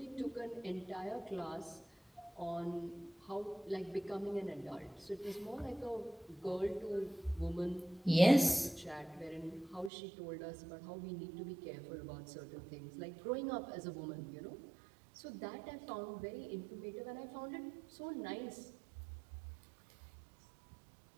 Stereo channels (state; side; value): drops out; left; at 9.9 s